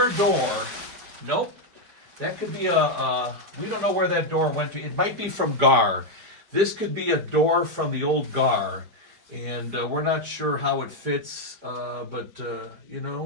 door. Nope. That could be we don't know where that door went to. It might be from GAR. This could be a door from the old GAR. And we're not sure how it fits, but, you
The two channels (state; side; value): late; left; 4.9 ms